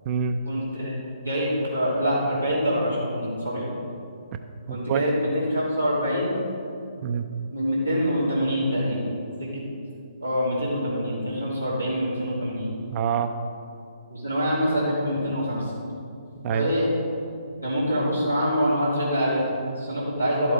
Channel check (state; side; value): inverted; both; correlation -0.74